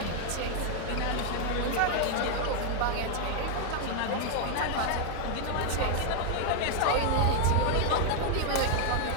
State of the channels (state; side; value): different; both; correlation 0.00